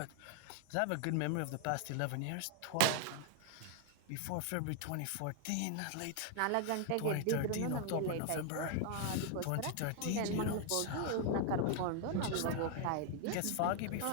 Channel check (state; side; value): different; both; correlation 0.00